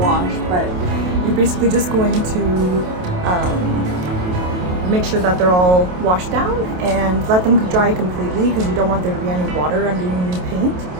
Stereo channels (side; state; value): left; late; 28 ms